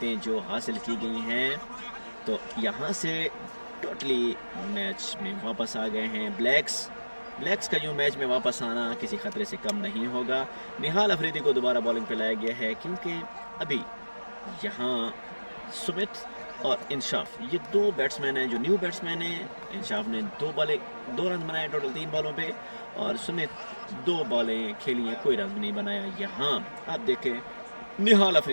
जो हासिल की गई हैं, तो यहाँ से टोटली मैच में वापस आ गए हैं ब्लैक्स का यूँ मैच में वापस आना किसी खतरे से कम नहीं होगा। निहाल अफरीदी को दोबारा बॉलिंग पे लाया गया है क्योंकि अभी यहाँ सुमित और इंशाफ ये 2 बैट्समैन हैं जो न्यू बैट्समैन हैं। इंशाफ ने 2 रन बनाए टोटल 3 बॉलों पे और सुमित 2 बॉलें खेली हैं, कोई रन नहीं बनाया। यहाँ आप देखें निहाल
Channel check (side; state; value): both; inverted; correlation -1.00